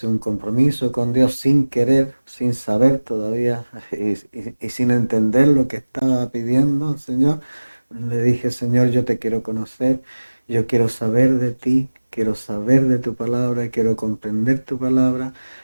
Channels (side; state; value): both; inverted; correlation -1.00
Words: un compromiso con Dios sin querer, sin saber todavía y sin entender lo que estaba pidiendo al Señor. Le dije: Señor, yo te quiero conocer, yo quiero saber de ti, quiero saber de tu palabra, quiero comprender tu palabra.